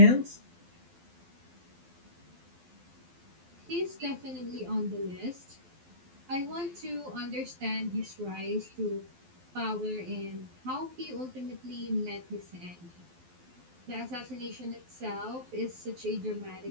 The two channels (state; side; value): late; left; 12 ms